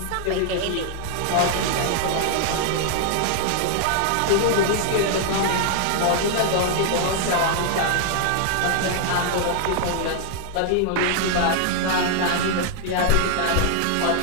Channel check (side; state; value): both; different; correlation -0.01